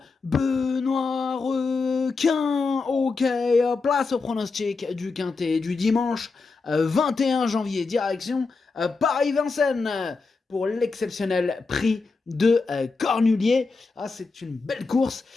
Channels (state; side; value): quieter; right; 4.2 dB